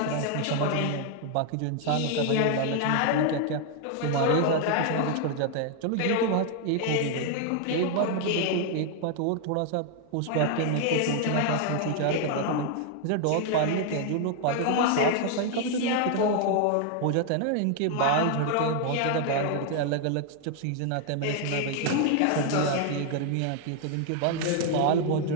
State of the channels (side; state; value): both; different; correlation 0.00